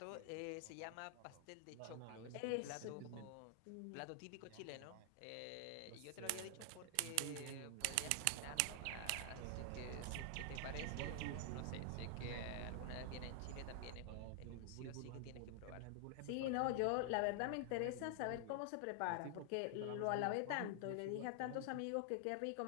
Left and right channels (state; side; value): different; both; correlation 0.00